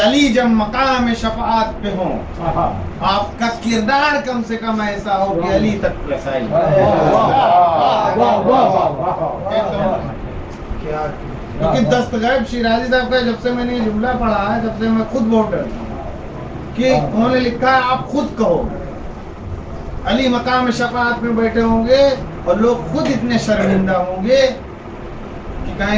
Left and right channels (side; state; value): both; identical; correlation 1.00